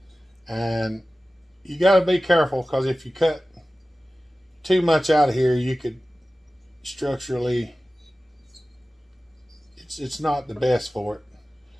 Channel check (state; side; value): normal; both; correlation 0.96